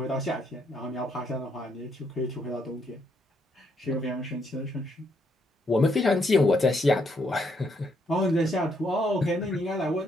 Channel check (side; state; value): both; normal; correlation 0.74